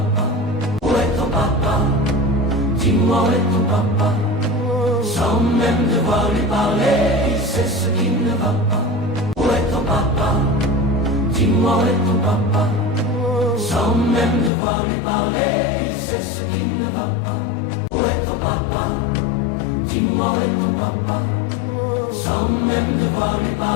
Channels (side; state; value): right; drops out; at 14.5 s